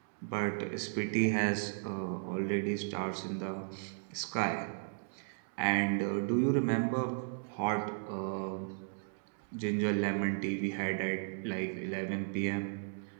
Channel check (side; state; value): left; silent; digital silence